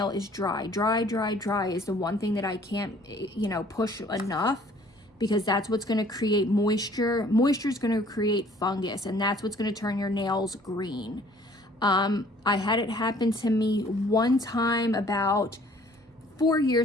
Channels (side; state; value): both; normal; correlation 0.56